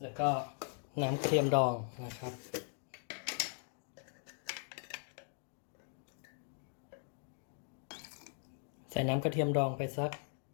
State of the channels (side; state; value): right; silent; 52 dB below the other